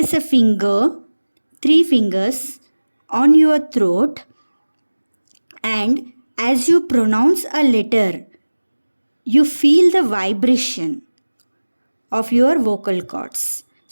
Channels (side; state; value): both; inverted; correlation -1.00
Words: a finger, three fingers on your throat, and as you pronounce a letter, you feel the vibration of your vocal cords.